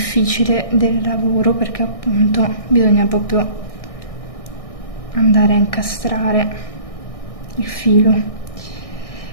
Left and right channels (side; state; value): right; late; 1.6 ms